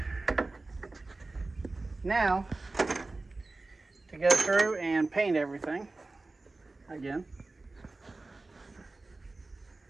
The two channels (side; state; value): left; quieter; 3.3 dB